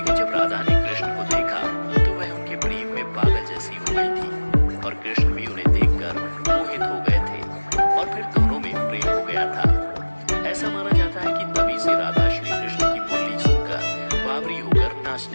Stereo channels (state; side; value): inverted; both; correlation -1.00